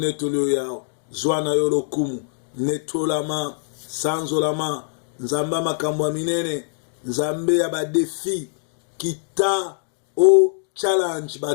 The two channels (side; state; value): right; silent; digital silence